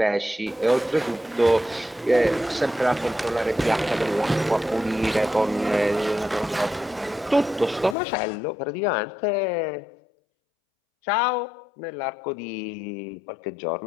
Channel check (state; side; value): drops out; right; at 8.0 s